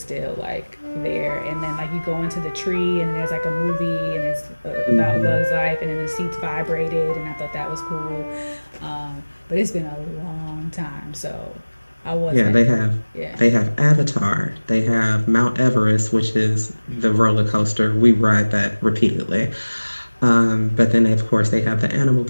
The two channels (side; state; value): both; inverted; correlation -1.00